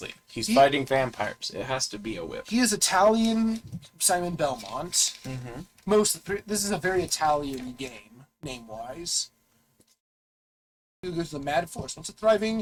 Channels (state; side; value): identical; both; correlation 1.00